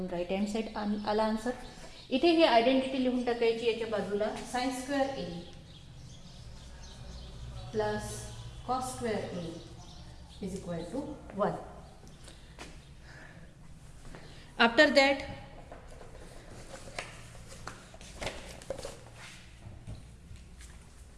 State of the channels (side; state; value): both; identical; correlation 1.00